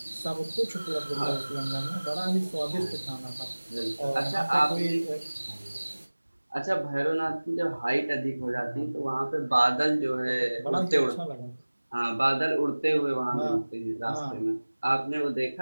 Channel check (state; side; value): inverted; both; correlation -1.00